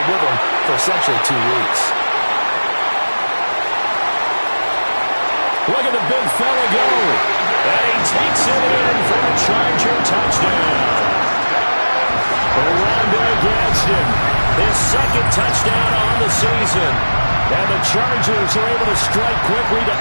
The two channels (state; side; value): inverted; both; correlation -1.00